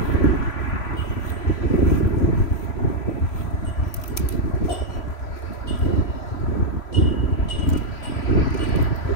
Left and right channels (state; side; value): late; right; 3.0 ms